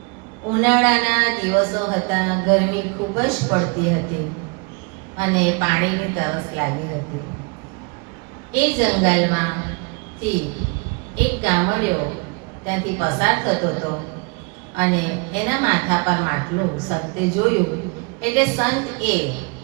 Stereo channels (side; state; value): left; quieter; 31.6 dB